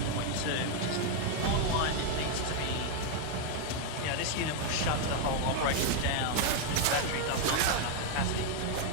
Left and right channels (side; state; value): both; different; correlation 0.01